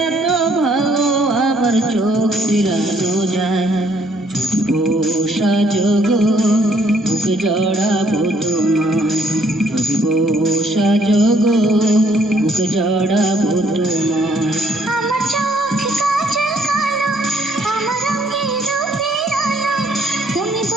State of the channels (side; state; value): both; normal; correlation 0.66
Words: এত ভালো, আমার চোখ ফিরানো যায়। বসা জগ বুকে জড়াবো তোমায়, যদি বসা জগ বুকে জড়াবো তোমায়। আমার চোখে কাজল কালো, আমার রঙে রূপের আলো, তুমি